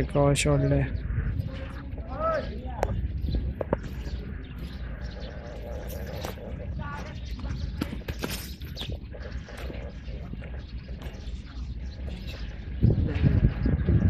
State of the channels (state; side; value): identical; both; correlation 1.00